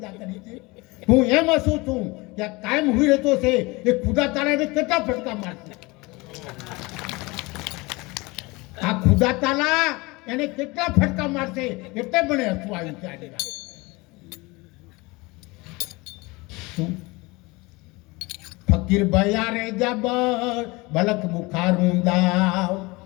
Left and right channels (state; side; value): quieter; right; 24.1 dB